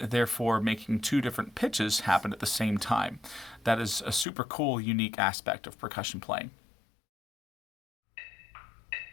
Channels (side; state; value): right; drops out; at 4.2 s